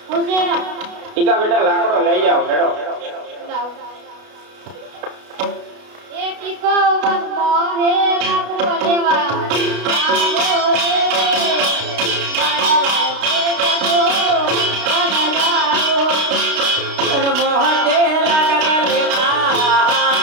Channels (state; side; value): late; left; 32 ms